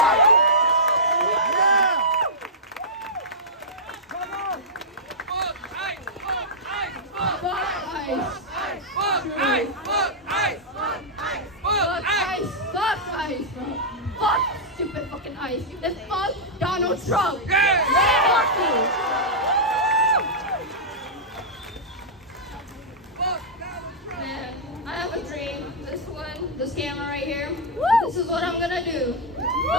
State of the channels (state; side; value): normal; both; correlation -0.09